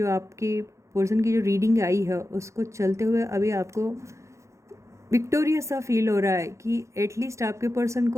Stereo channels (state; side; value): late; left; 0.14 ms